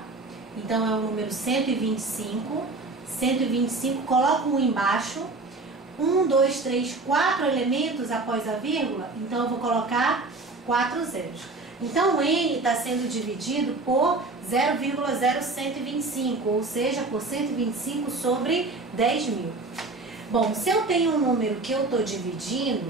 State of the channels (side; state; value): left; quieter; 3.4 dB